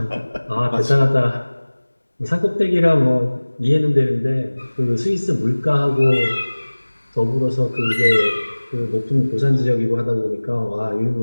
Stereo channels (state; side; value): inverted; both; correlation -1.00